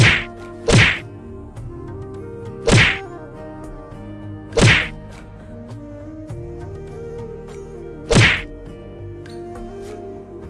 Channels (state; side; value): identical; both; correlation 1.00